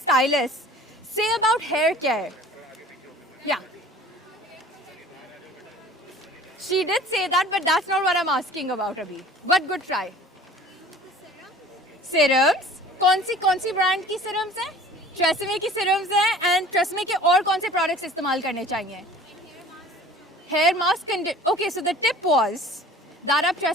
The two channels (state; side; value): normal; both; correlation 0.45